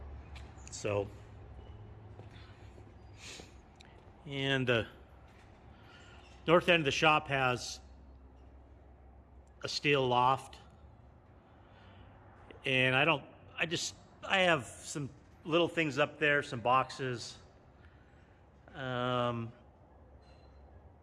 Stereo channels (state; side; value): identical; both; correlation 1.00